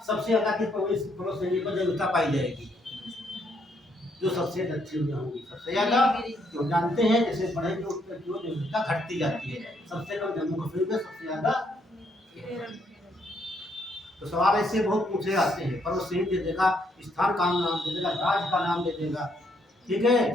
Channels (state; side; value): normal; both; correlation 0.73